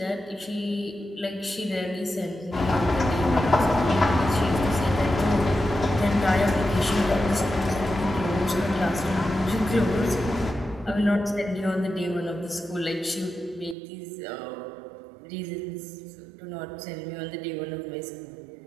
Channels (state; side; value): drops out; left; at 13.8 s